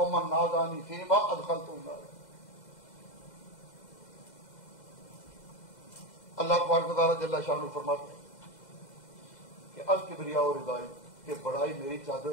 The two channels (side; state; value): right; late; 2.0 ms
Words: نازانی فیما ادخلت النار۔ اللہ تبارک و تعالیٰ جل شانہ فرماتے ہیں کہ الکبریاء ردائی، کہ بڑائی میری